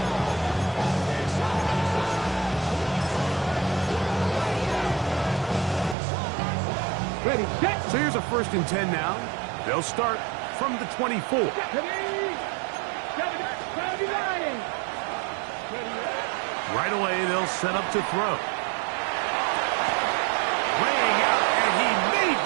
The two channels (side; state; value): left; drops out; at 6.0 s